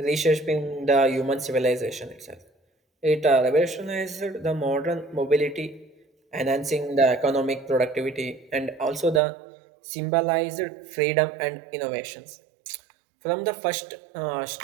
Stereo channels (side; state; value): left; drops out; at 9.2 s